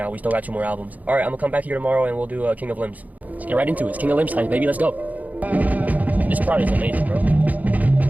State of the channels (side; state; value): left; late; 0.077 ms